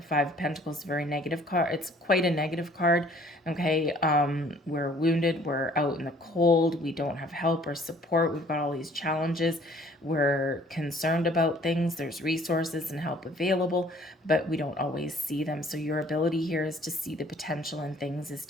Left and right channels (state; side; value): normal; both; correlation 0.56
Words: Five of Pentacles is a very negative card. It's quite a negative card. Okay. We're wounded. We're out in the cold. We don't have help or support. We've got all these challenges. we're concerned about things. There's resources and help available, but we don't always see them. So your ability here is to see the potential in things, is